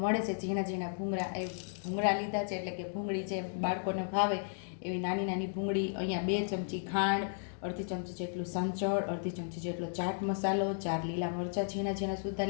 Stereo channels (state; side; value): silent; right; digital silence